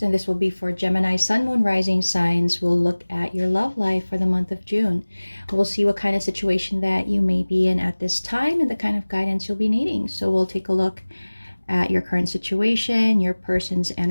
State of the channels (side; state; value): both; inverted; correlation -1.00